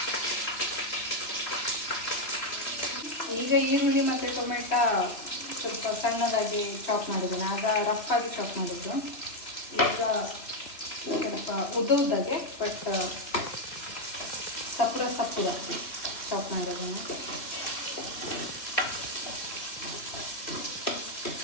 ಈಗ ಈರುಳ್ಳಿ ಮತ್ತು ಟೊಮೆಟೊ ಸ್ವಲ್ಪ ಸಣ್ಣದಾಗಿ ಚಾಪ್ ಮಾಡಿದ್ದೇನೆ. ಆಗ ರಫಾಗಿ ಚಾಪ್ ಮಾಡಿದ್ದು. ಈಗ ಸ್ವಲ್ಪ ಉದ್ದಾಗೆ ಬಟ್ ಸಪ್ಪುದಾಗಿ ಚಾಪ್ ಮಾಡಿದ್ದೇನೆ.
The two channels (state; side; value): late; right; 3.4 ms